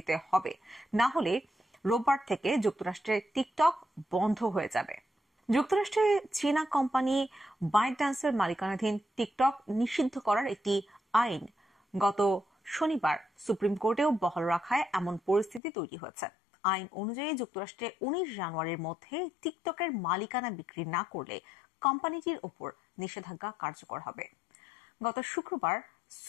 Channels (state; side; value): drops out; right; at 15.6 s